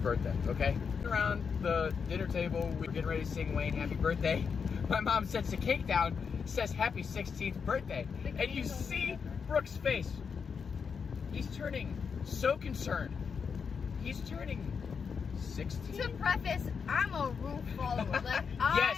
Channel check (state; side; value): quieter; right; 6.0 dB